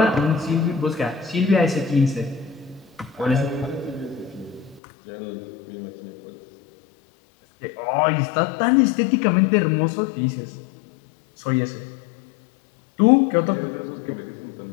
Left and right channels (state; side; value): drops out; right; at 4.8 s